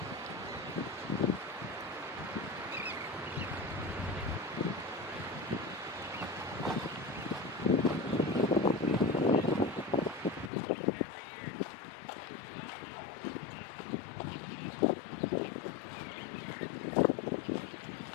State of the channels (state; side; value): drops out; right; at 10.5 s